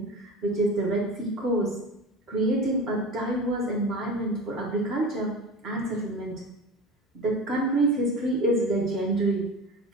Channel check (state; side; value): normal; both; correlation 0.31